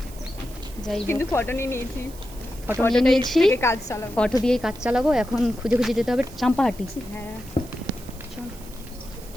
যাই কিন্তু ফটো নিয়ে নিয়েছি। ফটো নিয়ে নিয়েছি, কাজ চালাবো। ফটো দিয়েই কাজ চালাবো। এখন খুঁজে খুঁজে যেতে হবে চাম্পাহাটি। হ্যাঁ,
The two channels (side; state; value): right; noise; hiss, 20 dB below the sound